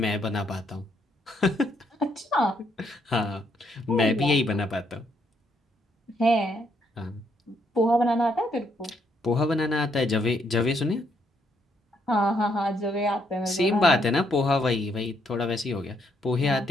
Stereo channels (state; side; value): normal; both; correlation 0.73